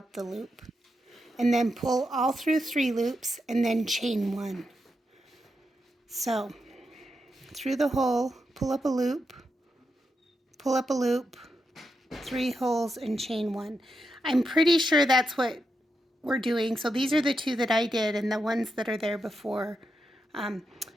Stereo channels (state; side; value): normal; both; correlation 0.85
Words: the loop. And then pull all through 3 loops and then chain 1. So, through the hole, pull up a loop, pull up a loop, 3 holes and chain 1. I'm pretty sure that's what we're doing. So these are the 2 that I did and the ones that are there before.